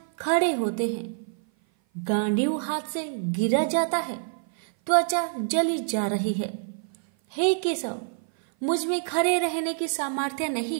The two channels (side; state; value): left; silent; 56 dB below the other